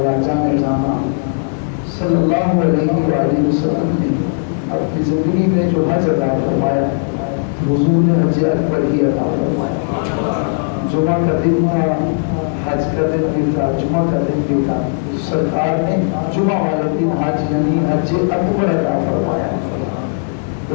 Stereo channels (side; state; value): right; silent; digital silence